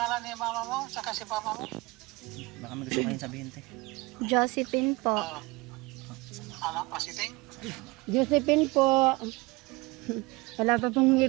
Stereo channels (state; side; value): quieter; left; 23.9 dB